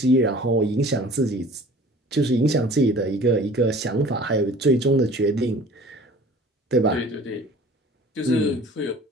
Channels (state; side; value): normal; both; correlation 0.47